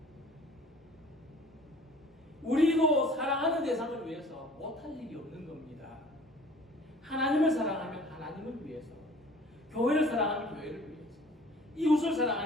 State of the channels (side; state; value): both; normal; correlation 0.50